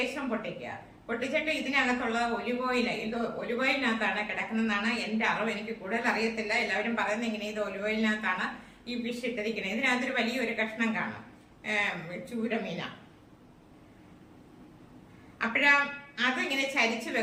പൊട്ടിക്കുക. പൊട്ടിച്ചിട്ട് ഇതിനകത്തുള്ള ഒലിവ് ഓയിൽ, ഇത് ഒലിവ് ഓയിലിനകത്താണ് കിടക്കുന്നതെന്നാണ് എന്റെ അറിവ്. എനിക്ക് കൂടുതൽ അറിയത്തില്ല. എല്ലാവരും പറയുന്നത് ഇങ്ങനെ ഇത് ഒലിവ് ഓയിലിനകത്താണ് ഈ ഫിഷ് ഇട്ടിരിക്കുന്നത്. ഇതിനകത്തൊരു വലിയൊരു കഷ്ണം കാണും, ചൂരമീന. അപ്പോഴാ അതിങ്ങനെ ചരിച്ചു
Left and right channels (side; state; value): both; identical; correlation 1.00